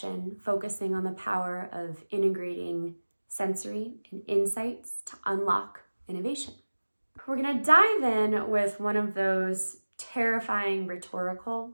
focusing on the power of integrating sensory and insights to unlock innovation. We're going to dive in with one of those terrifying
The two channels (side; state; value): both; inverted; correlation -1.00